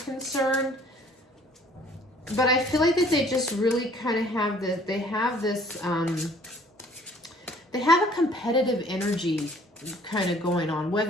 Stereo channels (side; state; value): both; normal; correlation 0.56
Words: But I feel like that they just really kind of have this, they have a competitive energy kind of going on,